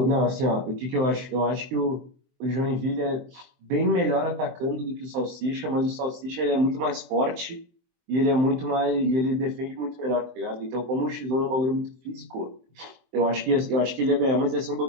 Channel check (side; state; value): left; late; 23 ms